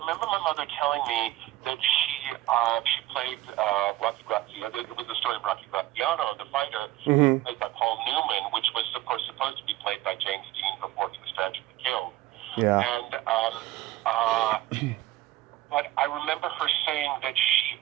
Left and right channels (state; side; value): quieter; left; 16.3 dB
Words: my mother telling me that she played Rocky Graziano. It was the story of Rocky Graziano, the fighter, Mm-hmm. played by Paul Newman, which was, of course, supposed to be played by James Dean before he was tragically killed. Yeah. And but I remember her saying that she